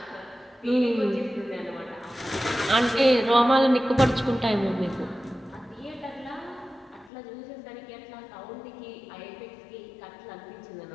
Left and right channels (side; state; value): right; drops out; at 7.1 s